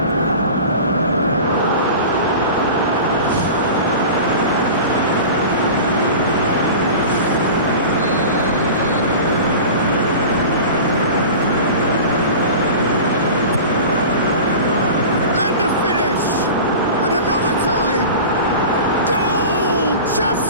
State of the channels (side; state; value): both; inverted; correlation -0.35